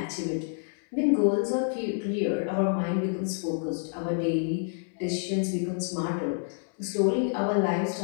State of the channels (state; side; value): silent; right; 59 dB below the other